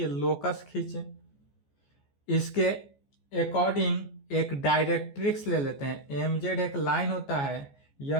लोकस खींचे। इसके अकॉर्डिंग एक डायरेक्ट्रिक्स ले लेते हैं। एम जेड एक लाइन होता है,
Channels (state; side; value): late; right; 14 ms